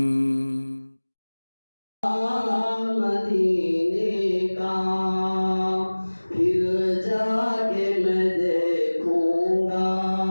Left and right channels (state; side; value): inverted; both; correlation -1.00